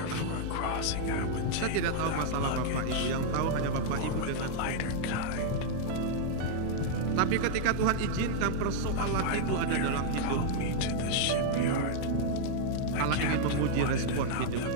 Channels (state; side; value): different; both; correlation -0.01